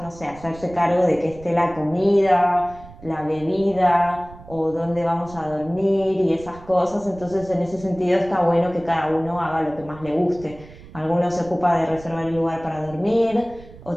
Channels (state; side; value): noise; right; rumble, 19 dB below the sound